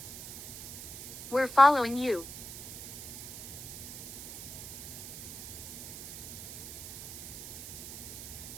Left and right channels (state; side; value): noise; right; hiss, 9 dB below the sound